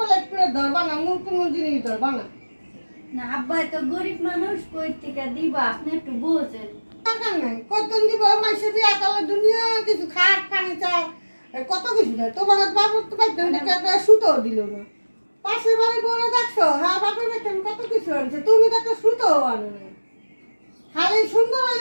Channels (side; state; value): both; inverted; correlation -1.00